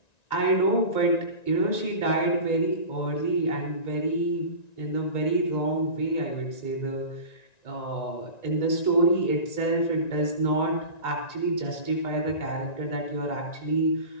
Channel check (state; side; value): late; right; 1.9 ms